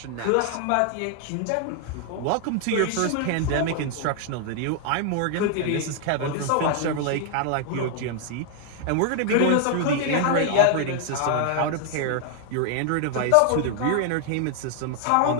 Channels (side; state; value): both; different; correlation 0.00